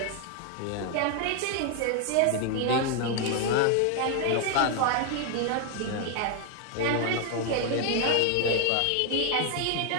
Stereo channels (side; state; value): both; different; correlation 0.00